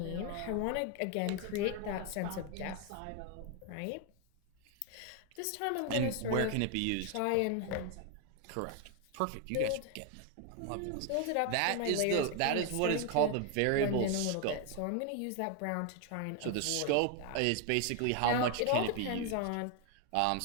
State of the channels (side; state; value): both; different; correlation 0.01